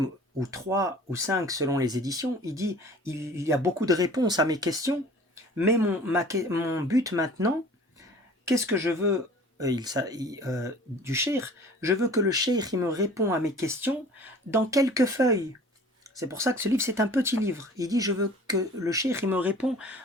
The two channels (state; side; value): normal; both; correlation 0.46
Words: ou 3 ou 5 selon les éditions, il dit il y a beaucoup de réponses à mes questions, mais mon but maintenant, qu'est-ce que je veux du cheikh? Je veux que le cheikh il me répond à mes questions dans quelques feuilles. C'est pour ça que ce livre, c'est un petit livre. Il dit, je veux que le cheikh il me répond